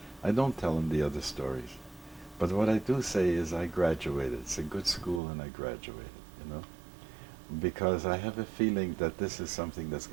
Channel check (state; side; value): drops out; left; at 5.2 s